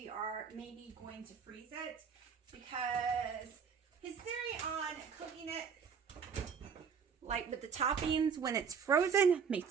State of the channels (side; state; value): left; quieter; 6.5 dB